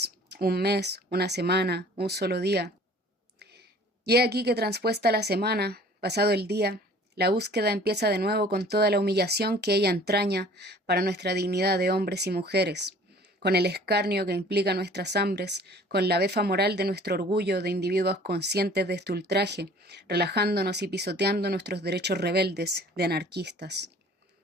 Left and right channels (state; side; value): normal; both; correlation 0.50